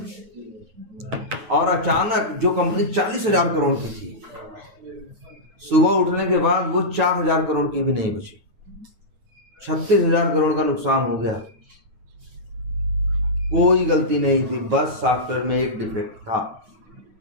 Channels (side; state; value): left; late; 9.3 ms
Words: और अचानक जो कंपनी 40,000 करोड़ की थी, सुबह उठने के बाद वो 4,000 करोड़ की भी नहीं बची, 36,000 करोड़ का नुकसान हो गया। कोई गलती नहीं थी, बस सॉफ्टवेयर में एक डिफेक्ट था।